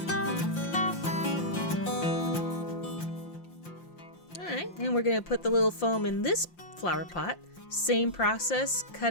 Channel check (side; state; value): right; late; 5.7 ms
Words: And we're going to put the little foam in this flower pot. Same process,